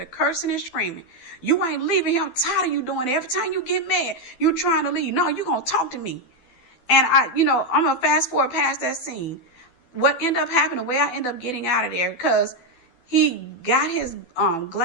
cursing and screaming. You ain't leaving here. I'm tired of you doing it. Every time you get mad, you trying to leave. No, you going to talk to me. And I'm going to fast forward past that scene. What ended up happening, the way I ended up getting out of there, because he got his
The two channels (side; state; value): right; late; 12 ms